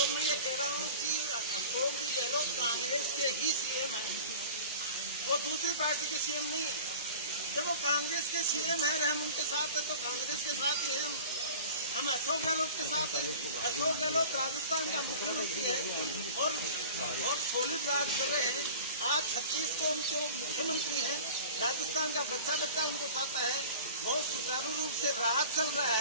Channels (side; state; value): both; inverted; correlation -0.39